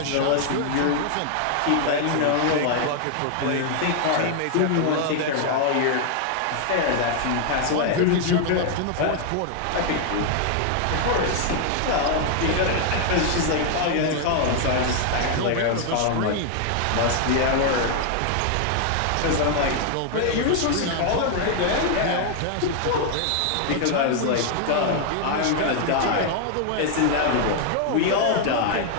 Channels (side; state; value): both; different; correlation 0.00